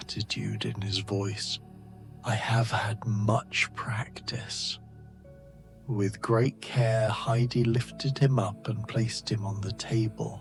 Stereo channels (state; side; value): identical; both; correlation 1.00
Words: in his voice. "I have had much practice." With great care, Heidi lifted him up and placed him on the